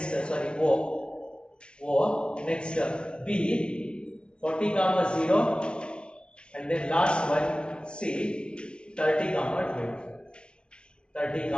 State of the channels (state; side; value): late; right; 0.057 ms